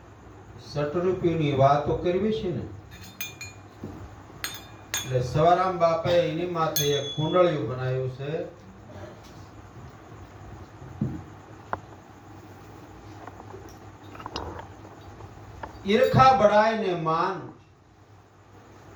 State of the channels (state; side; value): identical; both; correlation 1.00